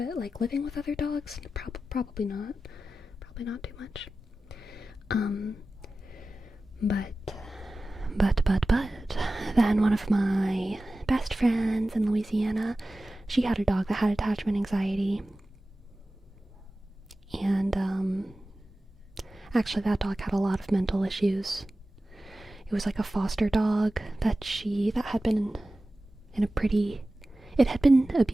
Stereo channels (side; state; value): both; normal; correlation 0.95